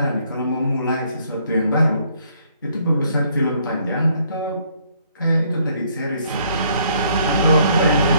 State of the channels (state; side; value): inverted; both; correlation -0.66